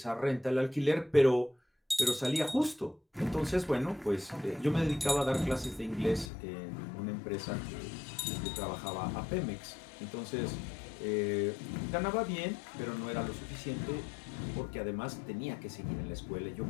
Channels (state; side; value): drops out; right; at 6.3 s